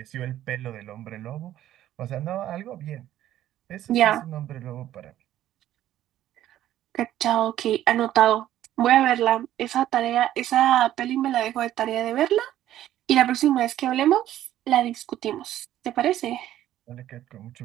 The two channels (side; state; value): left; quieter; 12.7 dB